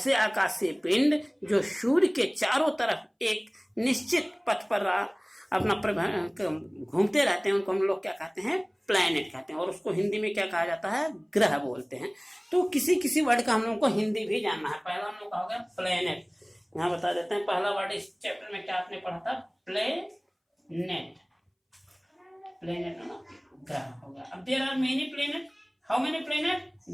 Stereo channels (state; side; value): identical; both; correlation 1.00